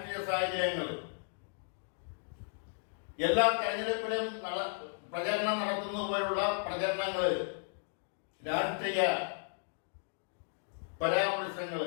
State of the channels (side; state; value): right; silent; digital silence